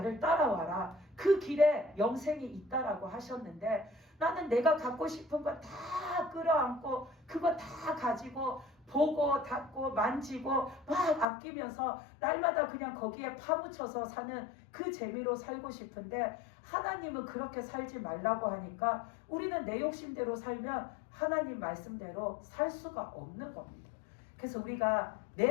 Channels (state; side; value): drops out; right; at 11.2 s